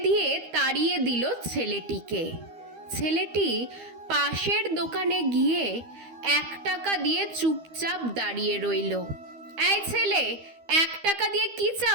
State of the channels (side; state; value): left; late; 12 ms